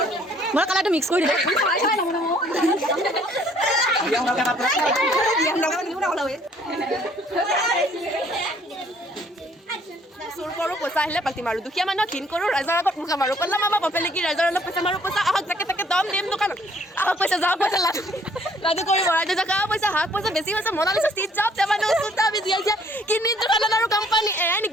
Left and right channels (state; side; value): normal; both; correlation 0.61